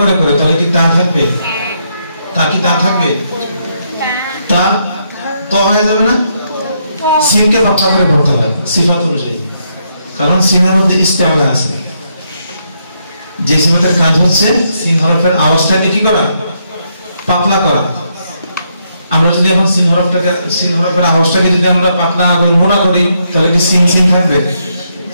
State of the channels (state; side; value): inverted; both; correlation -0.77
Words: করে করে তাহলে কি তা থাকবে? তা কি তা থাকবে? তা ত হয়ে যাবে না? সিনকে পাতলা করে পড়তে হয় সিফাত অনুযায়ী, কারণ সিনের মধ্যে ইস্তেআলা আছে। যে সিফাতের কাজ হচ্ছে সিন হরফের আওয়াজটাকে কি করা? পাতলা করা। আমরা যদি এখন সিন হরফের আওয়াজটাকে যদি আমরা পাতলা করি, মোটা করি, তাহলে কি সিন সিন থাকবে?